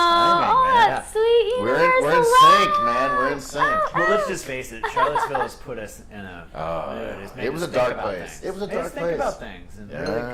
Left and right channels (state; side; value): identical; both; correlation 1.00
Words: man. that's sweet. We're Where's in the sync, love? man. We're in sync. Well, let's just face it. Charlottesville has put us in a. It's made It was us a think dark about place. things. It was a Made us dark think place. about things and Yeah. really